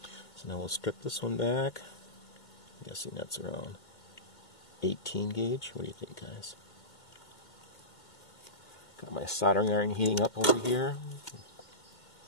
So now we'll strip this one back. I'm guessing that's around 18 gauge. What do you think, guys? Got my soldering iron heating up over here.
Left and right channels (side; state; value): right; late; 2.2 ms